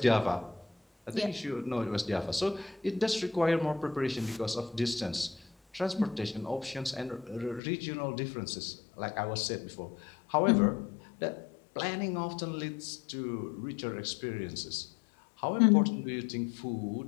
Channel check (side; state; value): right; drops out; at 7.6 s